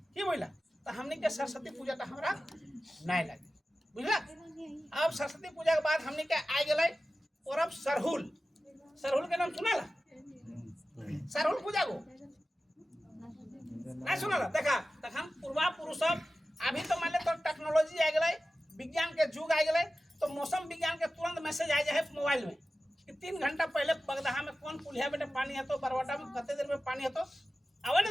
की बोला तो हमने के सरस्वती पूजा का हमारा नहीं लगे बुझला अब सरस्वती पूजा के बाद हमने के आ गए पर्व सरहुल के नाम सुना सरहुल पूजा को नहीं सुना देखा तखन पूर्वा पुरुष अभी तो मान ले तो टेक्नोलॉजी आ गए विज्ञान के युग आ गए तो मौसम विज्ञान के तुरंत मैसेज आ जाए मोबाइल में कि 3 घंटा पहले बगदहा में कौन पुलिया बेटे पानी है तो बरवाटा में कते देर में पानी है तो आवे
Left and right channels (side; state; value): both; normal; correlation 0.94